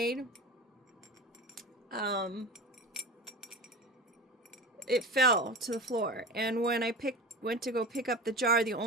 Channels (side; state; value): both; normal; correlation 0.30